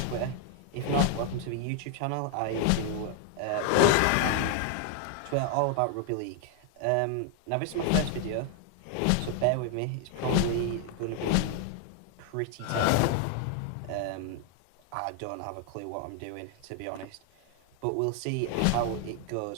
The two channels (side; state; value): both; different; correlation 0.00